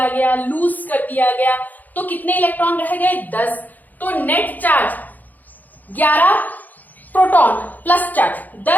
गया, लूज कर दिया गया, तो कितने इलेक्ट्रॉन रह गए? 10। तो net charge 11 proton plus charge,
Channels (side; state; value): right; late; 0.083 ms